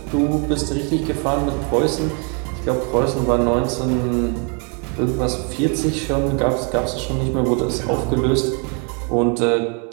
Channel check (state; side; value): quieter; left; 37.3 dB